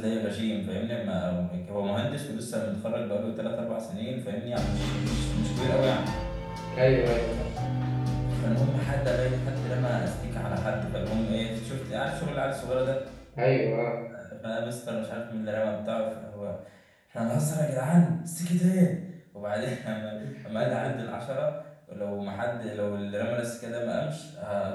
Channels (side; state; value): both; identical; correlation 1.00